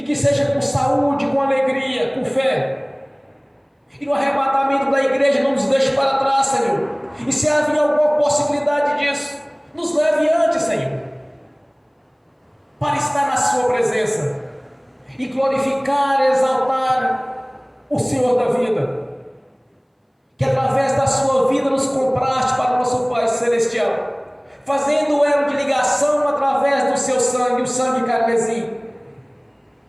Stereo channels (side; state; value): both; identical; correlation 1.00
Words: que seja com saúde, com alegria, com fé, e no arrebatamento da igreja não nos deixe para trás, Senhor, e se havia alguma possibilidade disso, nos leve antes, Senhor, para estar na sua presença, e glorificar, exaltar o Senhor da vida, que através da sua vida nos compraste para o nosso Pai Celestial, fazendo o elo de ligação através do seu sangue, o sangue carmesim,